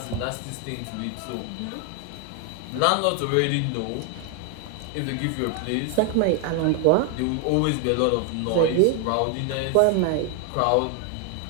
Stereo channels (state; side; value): different; both; correlation 0.00